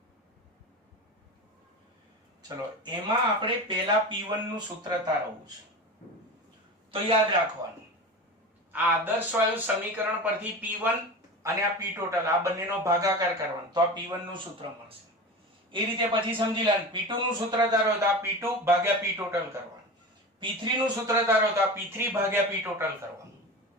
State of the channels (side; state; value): both; normal; correlation 0.29